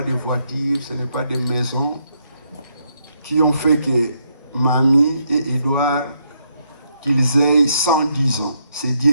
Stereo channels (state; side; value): inverted; both; correlation -0.76